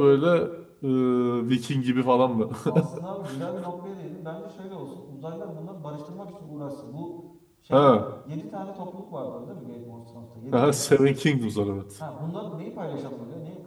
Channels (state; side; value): identical; both; correlation 1.00